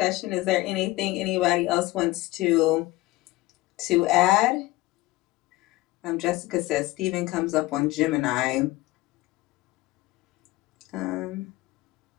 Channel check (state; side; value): quieter; right; 19.4 dB